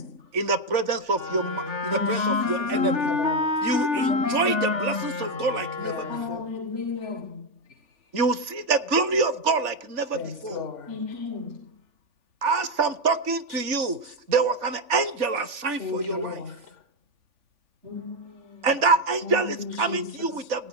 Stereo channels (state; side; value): late; left; 3.4 ms